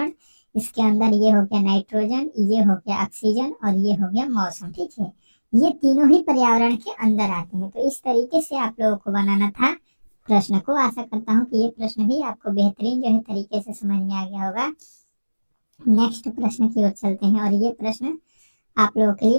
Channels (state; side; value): inverted; both; correlation -1.00